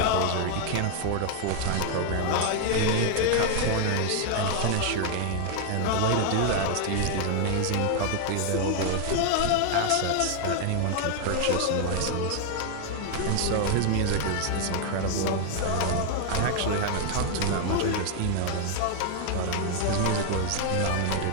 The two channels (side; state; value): both; different; correlation 0.00